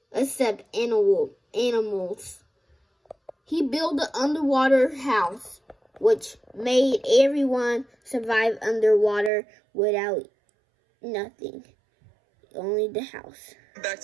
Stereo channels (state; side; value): drops out; left; at 9.3 s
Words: except animals. He built an underwater house which made everyone survive underwater without nothing. Only the house. Back